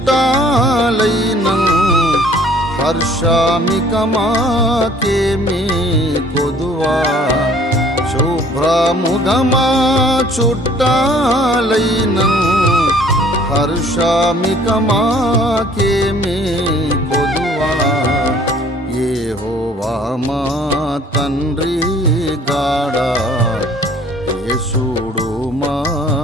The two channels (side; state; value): both; normal; correlation 0.55